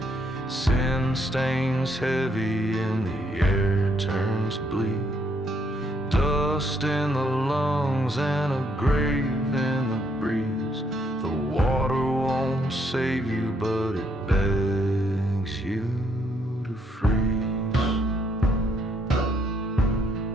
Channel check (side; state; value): both; normal; correlation 0.72